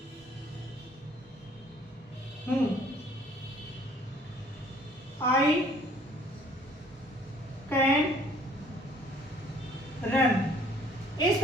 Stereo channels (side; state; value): both; normal; correlation 0.58